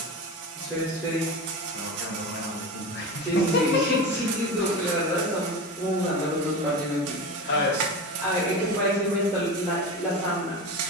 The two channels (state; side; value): normal; both; correlation 0.25